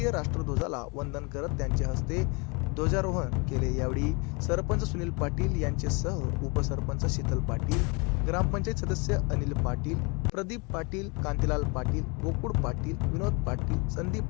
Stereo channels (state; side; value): quieter; right; 30.7 dB